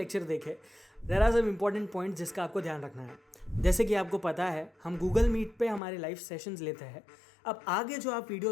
देखें, there are some important points जिसका आपको ध्यान रखना है। जैसे कि आपको पता है, हम गूगल मीट पे हमारे लाइव सेशंस लेते हैं। अब आगे जो आप वीडियो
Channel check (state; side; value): drops out; right; at 5.8 s